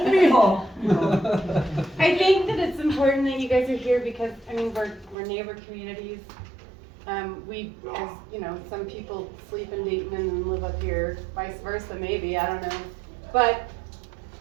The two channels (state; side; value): drops out; left; at 5.2 s